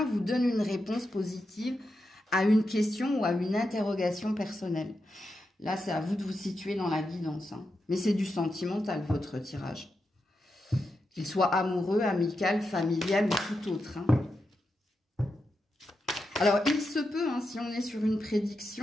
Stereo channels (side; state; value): both; normal; correlation 0.87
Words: vous donne une réponse positive à une question ou à une interrogation personnelle. Là, c'est à vous de vous situer dans la guidance. Hein. Mais c'est du sentimental, votre tirage. Qu'il soit amoureux, amical, familial ou tout autre. Hein. Alors, il se peut, hein, si on est sur une